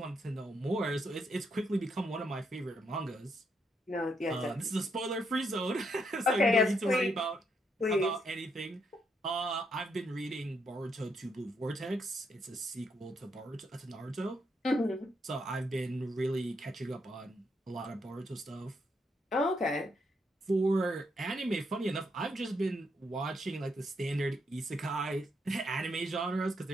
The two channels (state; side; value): normal; both; correlation 0.77